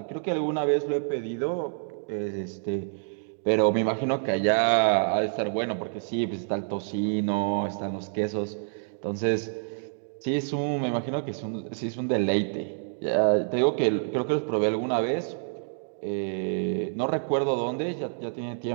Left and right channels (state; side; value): silent; left; digital silence